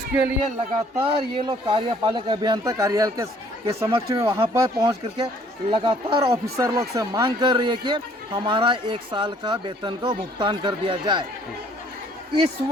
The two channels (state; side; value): normal; both; correlation 0.60